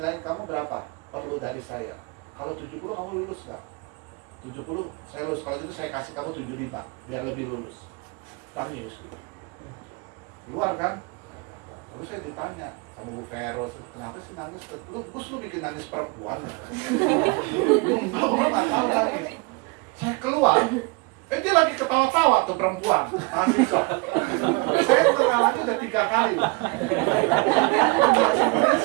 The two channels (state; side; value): quieter; left; 28.5 dB